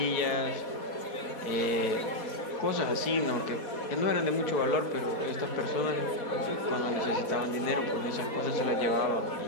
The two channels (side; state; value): right; late; 4.2 ms